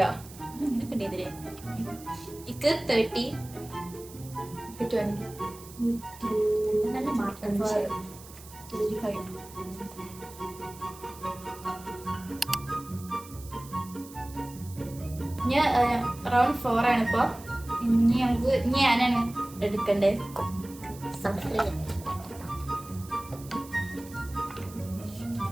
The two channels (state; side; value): noise; right; hiss, 18 dB below the sound